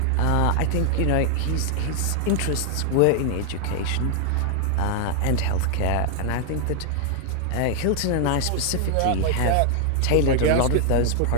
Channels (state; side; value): different; both; correlation 0.00